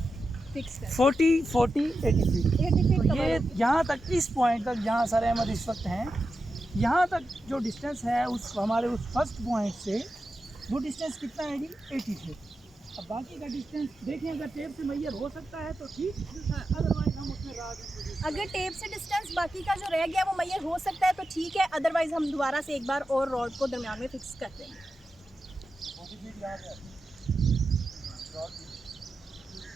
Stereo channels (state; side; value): normal; both; correlation 0.90